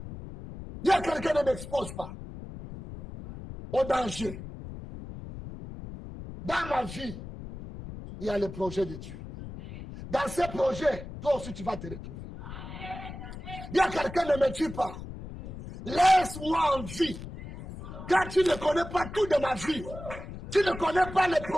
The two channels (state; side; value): noise; left; rumble, 11 dB below the sound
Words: Il y a quelqu'un qui ne m'expose pas au danger. Dans ma vie, il y a le projet de Dieu. Dans ce projet, toi aussi tu vas te retrouver. Il y a quelqu'un qui ne me tue pas. Laisse-moi en vie. Car tu ne connais pas tout de ma vie. Tu ne connais pas le